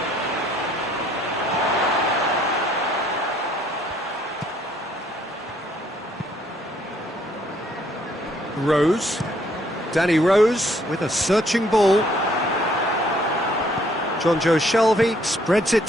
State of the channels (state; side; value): normal; both; correlation 0.65